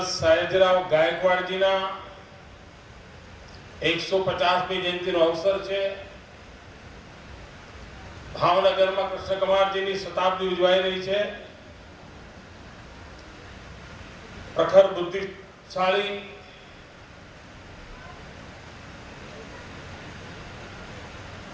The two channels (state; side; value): identical; both; correlation 1.00